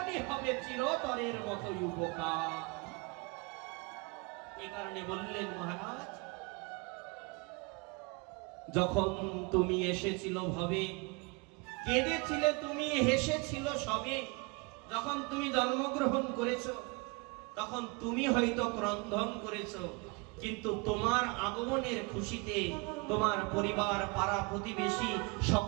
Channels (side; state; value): left; quieter; 28.4 dB